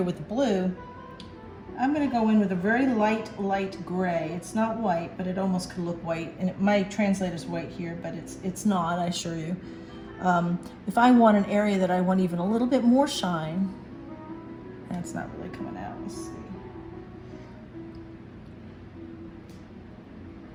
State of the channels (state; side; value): identical; both; correlation 1.00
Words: with the blue. I'm going to go in with a very light gray. It's not white, but it almost could look white, and it might translate as white here, but it's not, I assure you. If I want an area that I want even a little bit more shine, and it's not really coming out. Let's see.